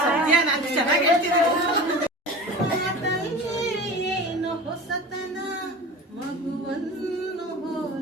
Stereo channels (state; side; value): normal; both; correlation 0.34